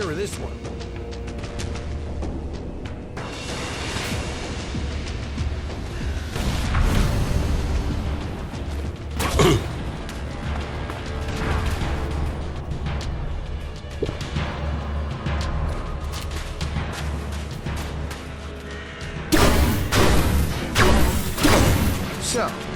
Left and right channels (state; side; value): identical; both; correlation 1.00